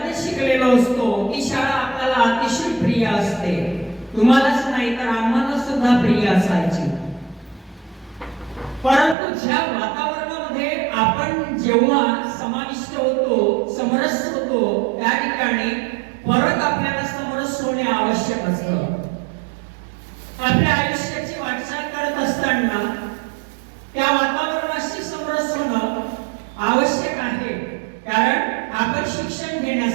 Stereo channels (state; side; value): drops out; left; at 9.2 s